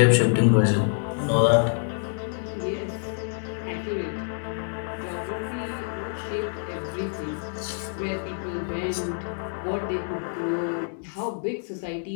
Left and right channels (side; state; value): right; silent; digital silence